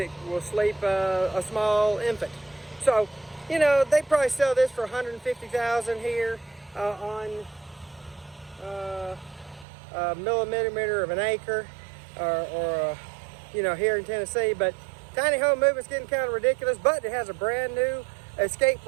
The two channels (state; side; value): drops out; left; at 9.7 s